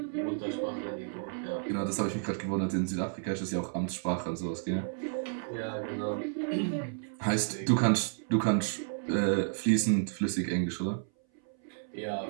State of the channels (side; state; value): left; silent; 57 dB below the other